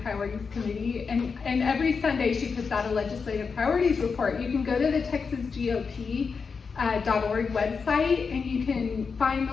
Priorities Committee, and every Sunday she puts out a Legislative Priorities report. You can go to the TexasGOP.org website and you can find the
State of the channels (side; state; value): right; quieter; 5.3 dB